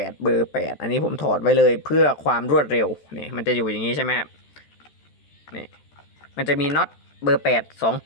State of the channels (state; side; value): late; right; 13 ms